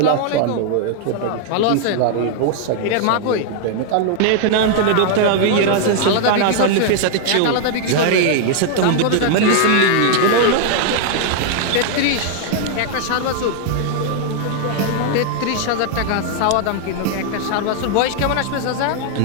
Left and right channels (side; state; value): both; different; correlation 0.00